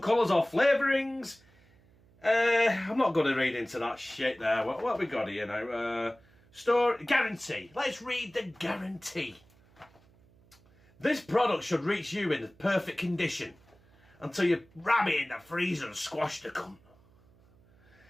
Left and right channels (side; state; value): right; noise; hum, 30 dB below the sound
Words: or flavourings. I'm not going to read into that shit there. What have we got here now? Store guarantee. Let's read the guarantee. This product should reach you in the perfect condition until you ram it in the freezer and squash the cunt.